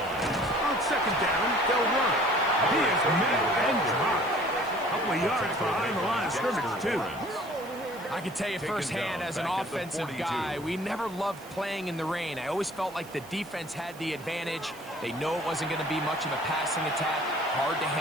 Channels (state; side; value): noise; right; hiss, 21 dB below the sound